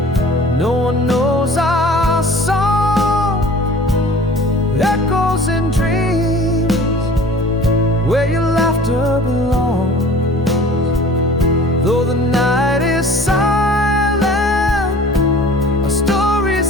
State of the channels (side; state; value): both; normal; correlation 0.45